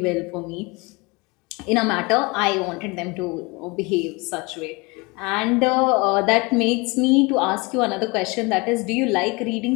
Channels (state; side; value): quieter; right; 26.5 dB